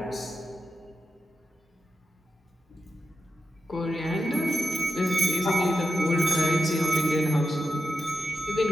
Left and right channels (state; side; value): normal; both; correlation 0.89